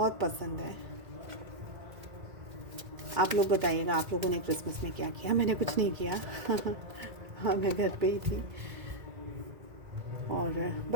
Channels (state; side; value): late; left; 1.9 ms